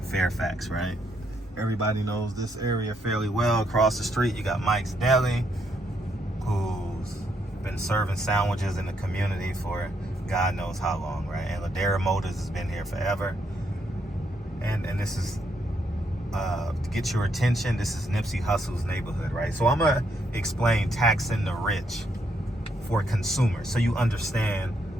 Fairfax, right? Everybody knows this area fairly well. Across the street, you got Mike's Deli, who's been serving sandwiches in the community for God knows how long, right? And Ladera Motors has been here forever. And this is, to get your attention, this is Nipsey Hussle's neighborhood, right? So I'm going to explain taxing the rich for consumers, so you understand.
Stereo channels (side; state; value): both; normal; correlation 0.75